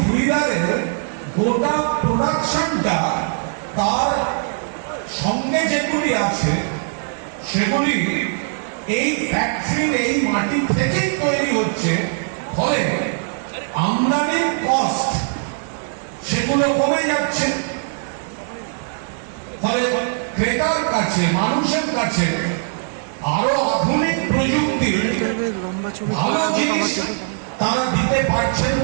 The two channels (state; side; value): silent; left; digital silence